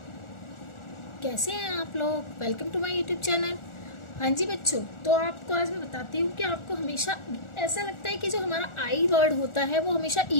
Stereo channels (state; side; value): late; right; 1.4 ms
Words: कैसे हैं आप लोग। Welcome to my YouTube channel. हाँ जी बच्चों, तो आपको आज मैं बताती हूँ कि आपको हमेशा ऐसा लगता है कि जो हमारा आई वर्ड होता है वो हमेशा ई